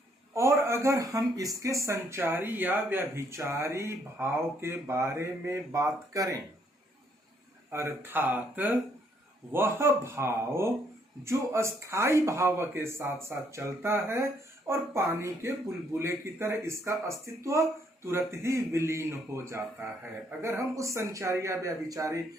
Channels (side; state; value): both; normal; correlation 0.69